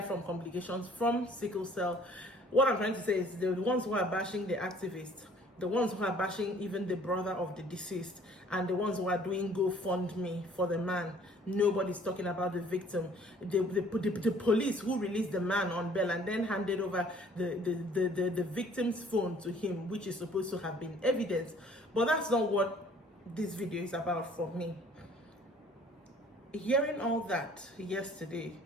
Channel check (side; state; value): both; normal; correlation 0.56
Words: from complications from sickle cell. What I'm trying to say is the ones who are bashing the activists, the ones who are bashing even the brother of the deceased, and the ones who are doing GoFundMe for the man, nobody's talking about the victim. The police who released the man on bail and then handed over the victim's phone to him, which is supposed to have been evidence. But that's not what this video is about for me. Hearing all that yesterday